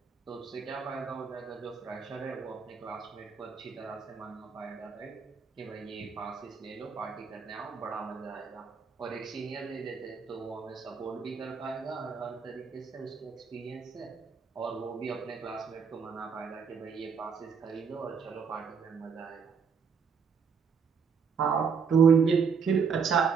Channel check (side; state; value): left; quieter; 6.1 dB